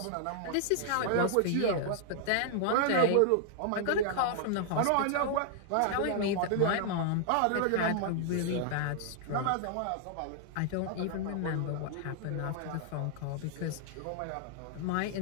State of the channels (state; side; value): different; both; correlation -0.01